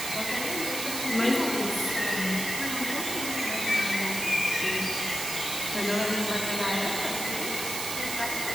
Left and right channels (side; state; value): right; noise; hiss, 3 dB below the sound